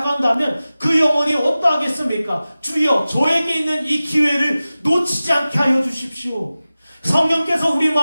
한다면 그 영혼이 어떠하겠습니까? 주여, 저에게 있는 이 기회를 놓치지 않게 하여 주십시오. 성령께서 우리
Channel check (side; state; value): both; inverted; correlation -0.96